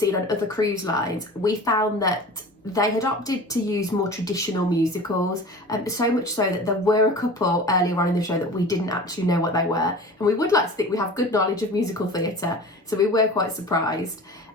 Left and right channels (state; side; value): normal; both; correlation 0.38